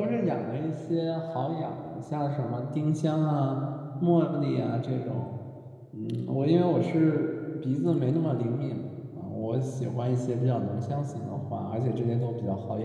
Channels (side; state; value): both; identical; correlation 1.00